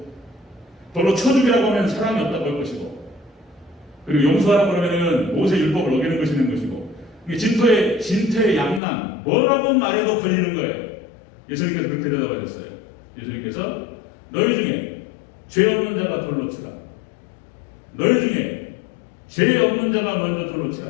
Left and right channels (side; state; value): right; drops out; at 8.8 s